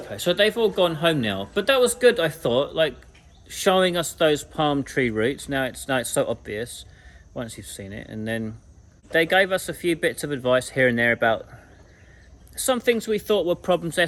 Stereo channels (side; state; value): both; identical; correlation 1.00